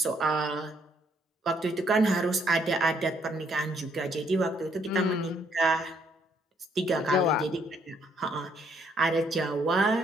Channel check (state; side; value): normal; both; correlation 0.69